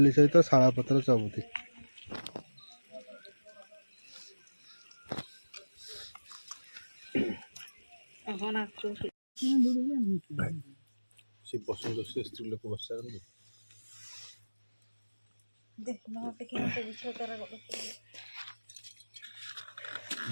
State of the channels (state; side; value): inverted; both; correlation -1.00